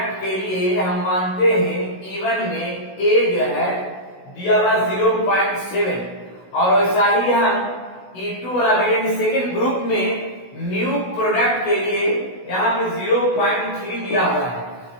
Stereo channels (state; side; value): late; right; 16 ms